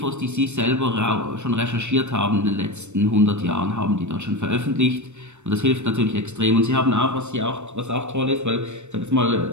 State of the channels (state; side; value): late; left; 0.83 ms